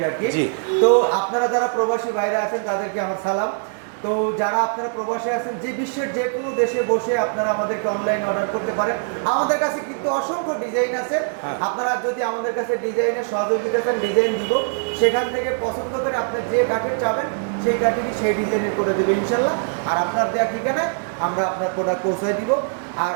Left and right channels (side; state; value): left; silent; 64 dB below the other